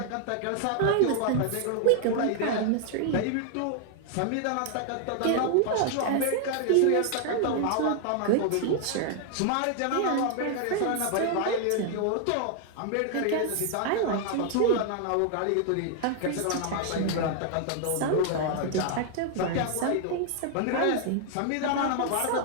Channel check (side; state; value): both; different; correlation 0.00